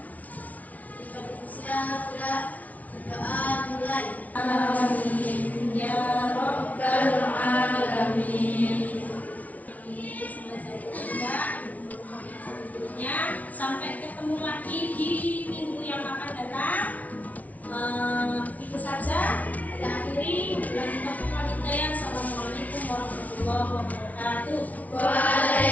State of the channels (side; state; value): right; late; 0.071 ms